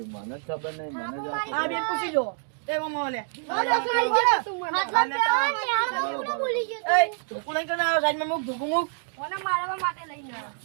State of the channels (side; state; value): left; silent; digital silence